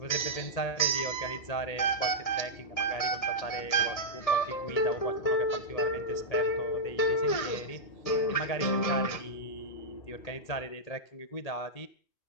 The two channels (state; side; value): late; right; 1.8 ms